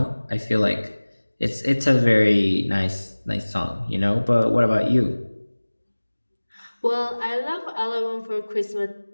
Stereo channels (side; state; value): both; inverted; correlation -1.00